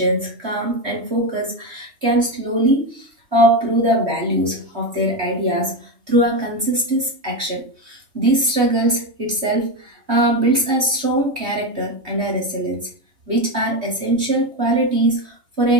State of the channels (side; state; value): left; late; 3.1 ms